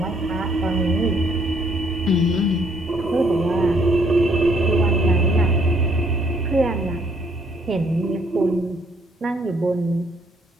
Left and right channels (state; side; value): normal; both; correlation 0.66